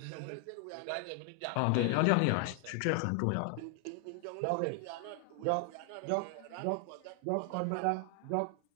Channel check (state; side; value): different; both; correlation 0.00